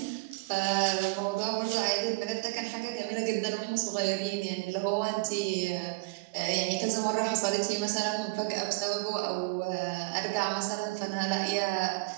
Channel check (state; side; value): quieter; left; 26.3 dB